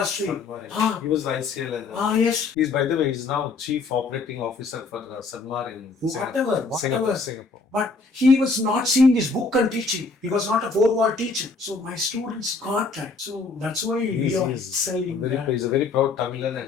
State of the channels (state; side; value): quieter; right; 4.1 dB